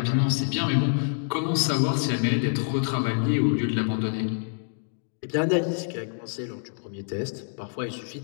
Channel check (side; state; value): right; silent; digital silence